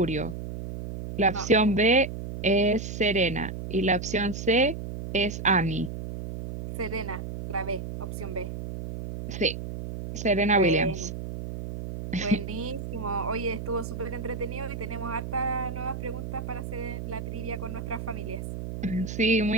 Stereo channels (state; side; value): noise; right; hum, 7 dB below the sound